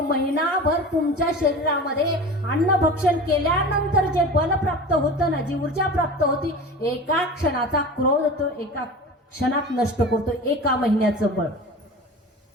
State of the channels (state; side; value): normal; both; correlation 0.34